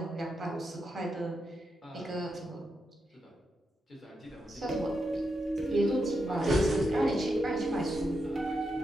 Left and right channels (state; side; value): normal; both; correlation 0.85